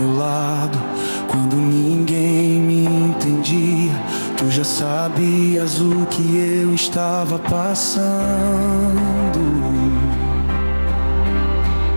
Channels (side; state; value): both; inverted; correlation -1.00